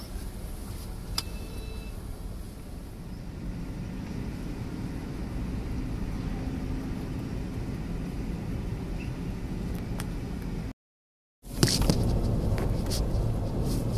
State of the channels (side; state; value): both; identical; correlation 1.00